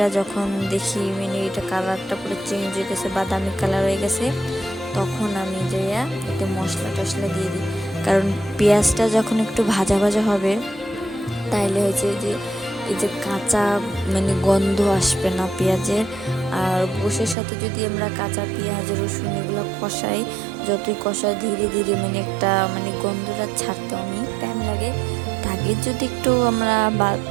যখন দেখি মানে এটা কালারটা পুরো চেঞ্জ হয়ে গেছে, বাদামি কালার হয়ে গেছে, তখন আমি যে এতে মশলা টশলা দিয়ে দিই। কারণ পেঁয়াজটা যখন একটু ভাজা ভাজা হবে, তাইলে হয়েছে যে এই যে কাঁচা মানে গন্ধ আসবে না পেঁয়াজের। আর গোশের সাথে যদি আমরা কাঁচা পেঁয়াজ, রসুন এগুলো কষাই, যতই কষাই ধীরে ধীরে মানে একটা মানে গন্ধটা ছাড়তে অনেক টাইম লাগে। আগে যদি একটু আমরা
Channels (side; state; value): left; drops out; at 17.4 s